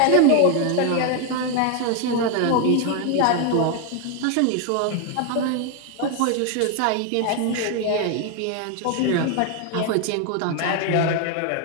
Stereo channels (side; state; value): both; different; correlation 0.01